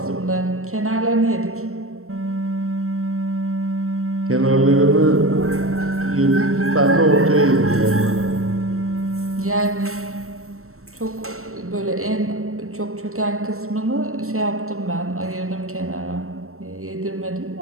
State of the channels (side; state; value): left; late; 0.63 ms